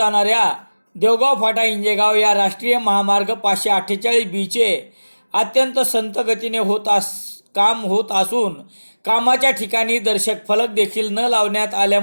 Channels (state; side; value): inverted; both; correlation -1.00